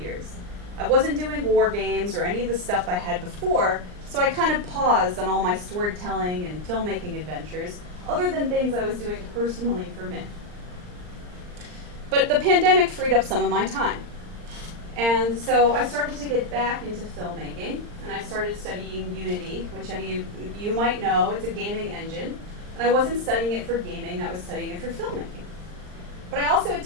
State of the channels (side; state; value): left; late; 39 ms